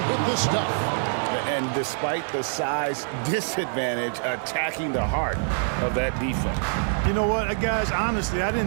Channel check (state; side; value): silent; left; 62 dB below the other